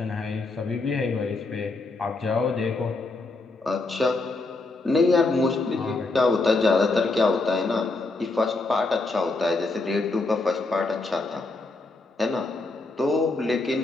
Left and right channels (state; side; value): quieter; right; 3.4 dB